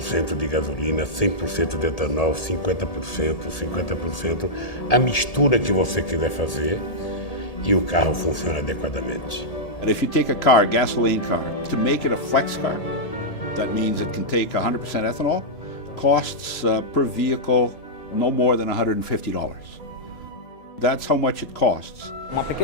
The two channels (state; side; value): late; right; 1.8 ms